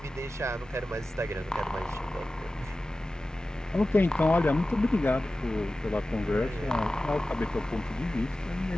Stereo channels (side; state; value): both; normal; correlation 0.95